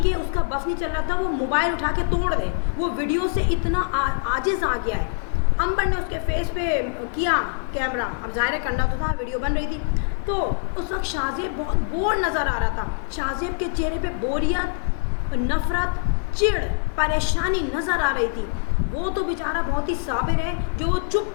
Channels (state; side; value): silent; right; 63 dB below the other